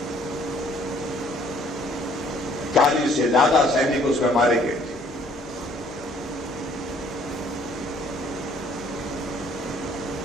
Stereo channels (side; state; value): both; normal; correlation 0.60